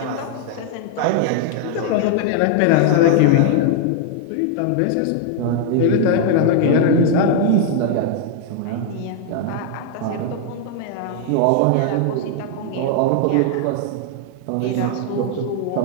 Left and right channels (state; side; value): different; both; correlation 0.00